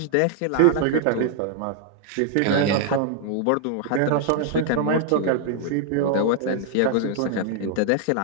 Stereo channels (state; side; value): different; both; correlation 0.00